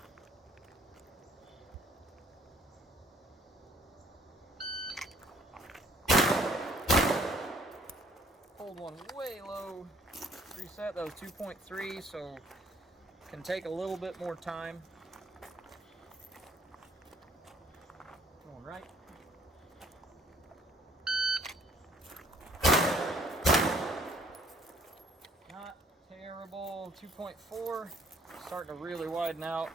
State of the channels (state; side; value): normal; both; correlation 0.61